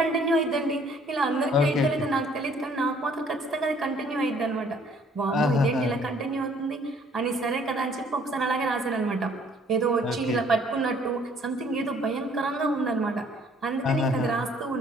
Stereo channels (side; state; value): both; normal; correlation 0.60